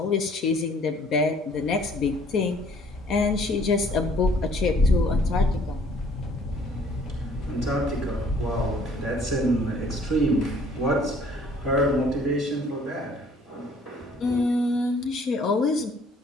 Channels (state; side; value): normal; both; correlation 0.58